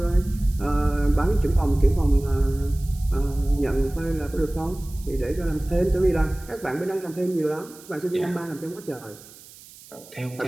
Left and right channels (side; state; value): right; noise; hiss, 21 dB below the sound